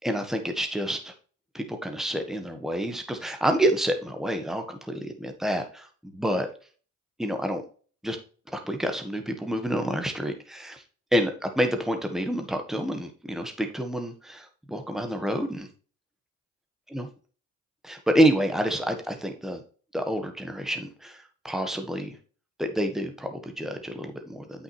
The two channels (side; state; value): both; normal; correlation 0.76